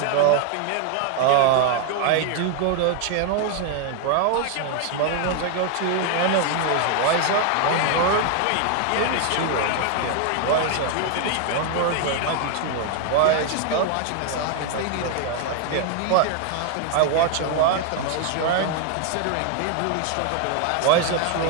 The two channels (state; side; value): different; both; correlation 0.00